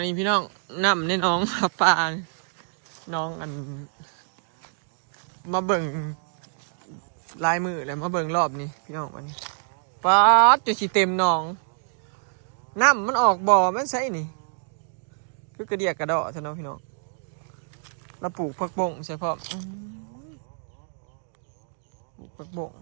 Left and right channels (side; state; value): left; silent; digital silence